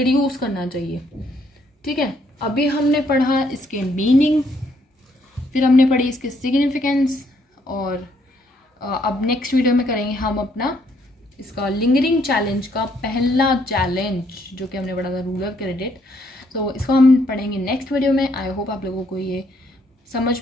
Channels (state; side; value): normal; both; correlation 0.70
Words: करना चाहिए। ठीक है, अभी हमने पढ़ा इसके मीनिंग, फिर हमने पढ़ी इसके सिग्निफिकेंस, और अब नेक्स्ट वीडियो में करेंगे हम अपना इसका लिंगरिंग चैलेंज का पहला चैलेंज जो कि हमने पढ़ा था, रूरल क्रेडिट। तो इसको हम पढ़ेंगे नेक्स्ट वीडियो में। आई होप आप लोगों को ये समझ